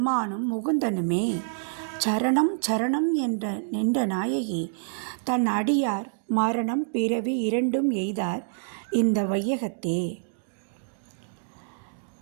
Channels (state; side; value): silent; left; digital silence